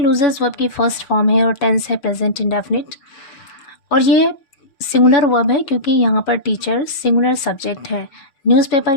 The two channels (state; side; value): late; right; 6.6 ms